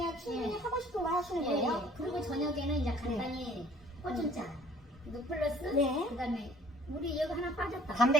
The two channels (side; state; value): both; normal; correlation 0.55